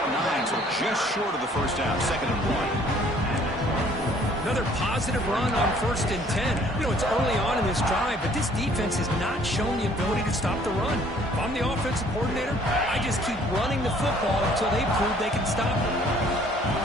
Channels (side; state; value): both; normal; correlation 0.58